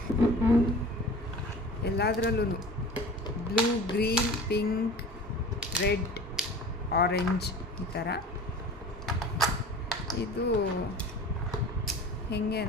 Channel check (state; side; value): normal; both; correlation 0.39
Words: ಎಲ್ಲದರಲ್ಲೂ blue, green, pink, red, orange ಈ ಥರ. ಇದು ಹೆಂಗೆ